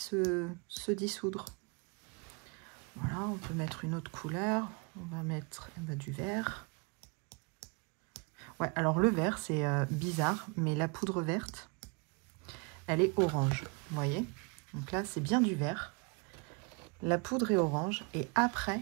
dissoudre. Voilà, on peut mettre une autre couleur. On va mettre du vert. Ouais, alors le vert, c'est bizarre, mais la poudre verte, elle est orange, vous voyez? Donc là, c'est bien du vert. La poudre est orange. Et après,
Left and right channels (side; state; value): left; quieter; 32.6 dB